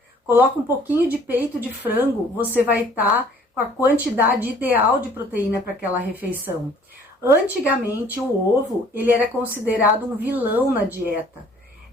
coloca um pouquinho de peito de frango, você vai estar com a quantidade ideal de proteína para aquela refeição. Antigamente, o ovo, ele era considerado um vilão na dieta.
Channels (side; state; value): both; normal; correlation 0.56